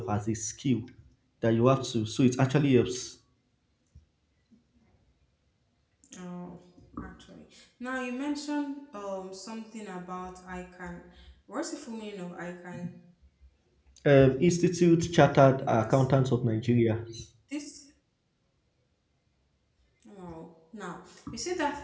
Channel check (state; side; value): identical; both; correlation 1.00